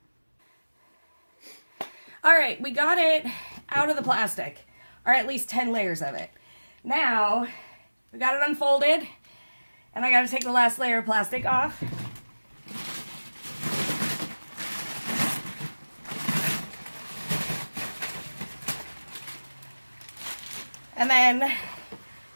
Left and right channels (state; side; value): inverted; both; correlation -1.00